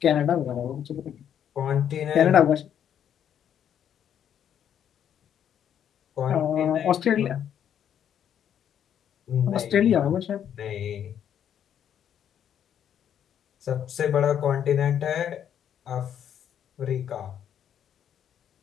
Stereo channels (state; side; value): quieter; right; 9.4 dB